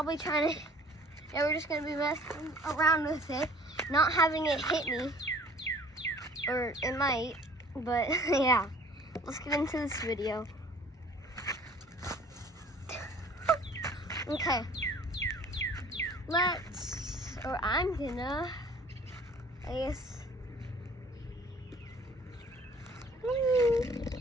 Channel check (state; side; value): normal; both; correlation 0.52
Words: trying to, we're just gonna be messing around with it, not having it hit me, or it might, but yeah. Let's get into this video. Okay. I'm gonna, I guess.